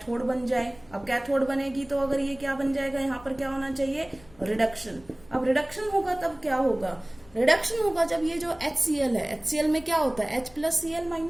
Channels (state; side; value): noise; left; rumble, 25 dB below the sound